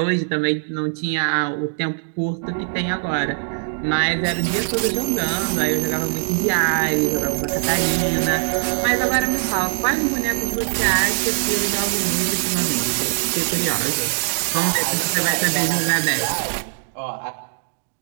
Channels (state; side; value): silent; left; digital silence